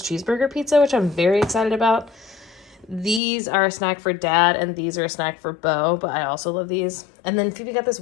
cheeseburger pizza, which I'm very excited about. These are a snack for Dad, and these are a snack for Bo, but I also love these. And then Phoebe got this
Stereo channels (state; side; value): drops out; right; at 3.2 s